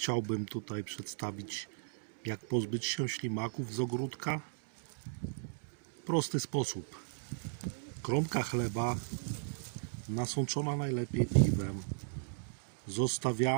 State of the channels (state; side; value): silent; left; digital silence